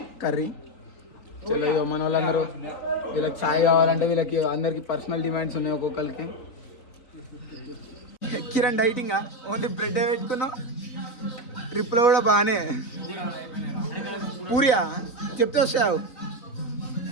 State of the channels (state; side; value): late; right; 3.9 ms